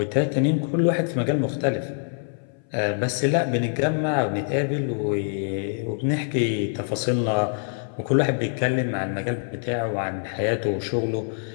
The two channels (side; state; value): right; silent; 60 dB below the other